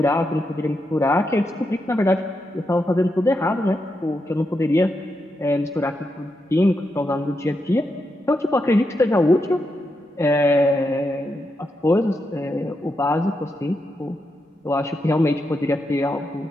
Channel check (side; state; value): both; normal; correlation 0.84